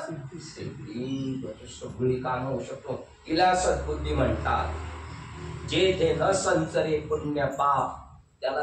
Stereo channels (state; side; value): identical; both; correlation 1.00